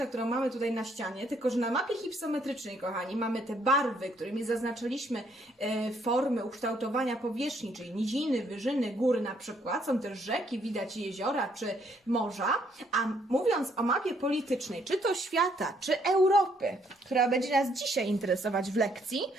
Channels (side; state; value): both; normal; correlation 0.69